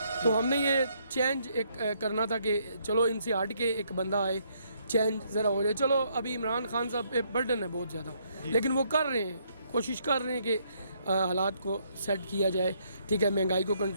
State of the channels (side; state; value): both; inverted; correlation -0.71